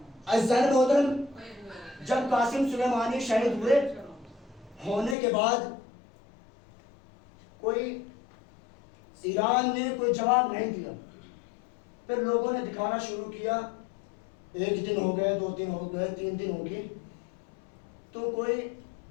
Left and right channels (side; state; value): right; drops out; at 5.2 s